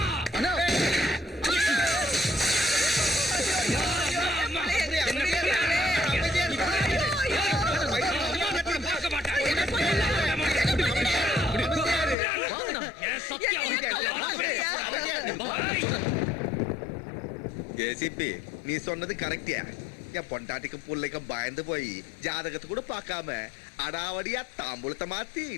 ஏசிபி, நீ சொன்னது கரெக்டியா? என் பொண்டாட்டிக்கும் பிள்ளைக்கும் பயந்து போய் ஜாதகத்தை கூட பார்க்காம அடாவடியா தாம்பூலத்தை மாத்தி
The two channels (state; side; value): drops out; right; at 12.2 s